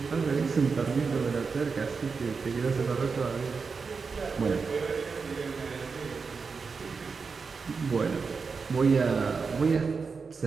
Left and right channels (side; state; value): left; quieter; 5.0 dB